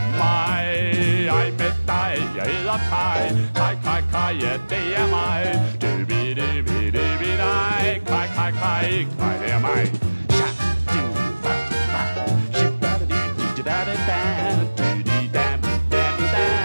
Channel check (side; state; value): both; inverted; correlation -1.00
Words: Ej med dig, jeg hedder Kai. Kai, Kai, Kai, ja, det er mig. Dig. Kai, Kai, Kai, Kai, det er mig. Sha, du, va, va.